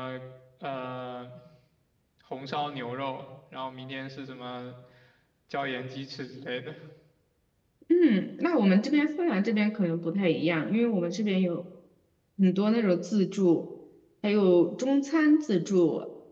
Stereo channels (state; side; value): identical; both; correlation 1.00